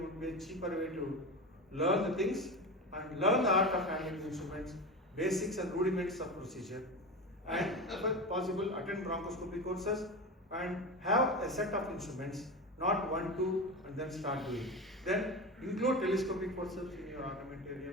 would be a cheaper way to learn the things and learn the art of handling instruments, basics and rudiments of procedure, and if possible attend bronchoscopy courses and have a set of instruments, not 1, 2 and then start doing. Then include telescopic forceps in your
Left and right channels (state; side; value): normal; both; correlation 0.24